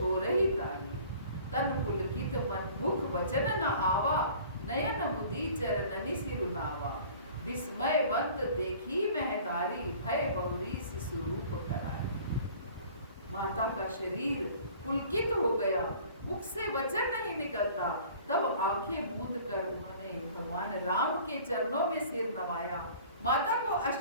तारी। तन पुलकित मन मुख वचन न आवा, नयन मुदी चरणनि सिरुनावा। विस्मयवंत देखी महतारी, भय बहुरी शिशुरूप करारी। माता का शरीर पुलकित हो गया, मुख से वचन नहीं निकलता। तब आंखें मूंद कर उन्होंने भगवान राम के चरणों में सिर नवाया। माता को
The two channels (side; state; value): both; inverted; correlation -0.48